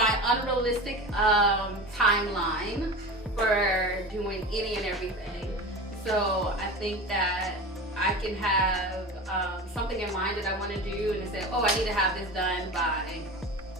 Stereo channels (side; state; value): both; normal; correlation 0.30